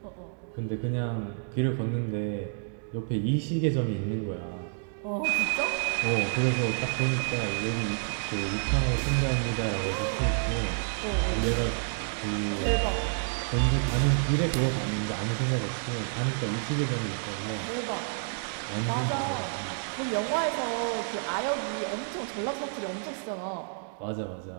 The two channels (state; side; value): silent; left; digital silence